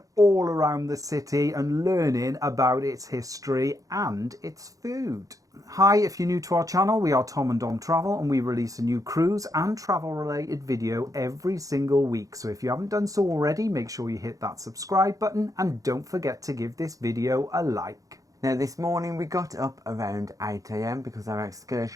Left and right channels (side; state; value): left; late; 0.17 ms